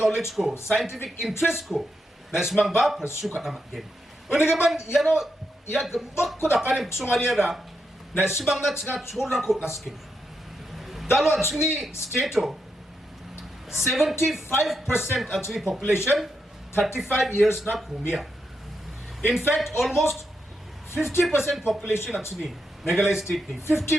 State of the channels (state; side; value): normal; both; correlation 0.83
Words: ko, scientific interest ko, na ismang ba pursue ka na mag-gain. Una gaman, yano, ya gambak ko na kanin kusunganya na ismang na nga chorang ko na skill. Dalo actually state 75% actually population 35 years na kumia. In fact, almost 50% population actually Meghalaya state ni